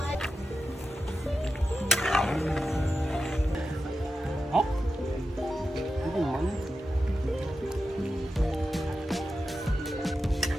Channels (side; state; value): both; normal; correlation 0.91